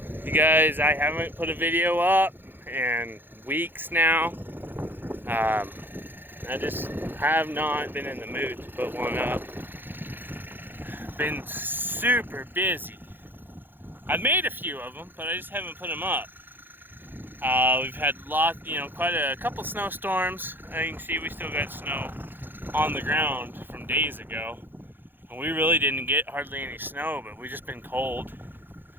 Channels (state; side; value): late; left; 0.097 ms